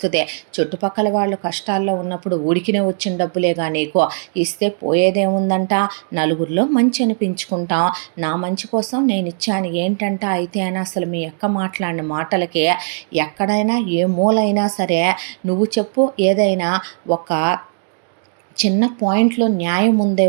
చుట్టుపక్కల వాళ్ళు కష్టాల్లో ఉన్నప్పుడు ఉడికినే వచ్చిన డబ్బులేగా నీకు, ఇస్తే పోయేదేముందంట, నలుగురిలో మంచి అనిపించుకుంటాం. నా మంచి కోసం నేను ఇచ్చాను ఏంటంట. అయితే అని అసలు మీ అక్క మాట్లాడిన మాటలకి ఎక్కడైనా ఏ మూలైనా సరే నువ్వు చెప్పు, ఏదైనా ఒక చిన్న పాయింట్లో న్యాయం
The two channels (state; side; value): silent; left; digital silence